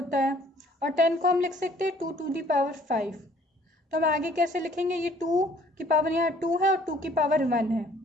है, और 10 को हम लिख सकते हैं 2 to the power 5। तो हम आगे कैसे लिखेंगे, ये 2 की पावर यहाँ 2 है और 2 की पावर 1 है,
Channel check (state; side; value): normal; both; correlation 0.57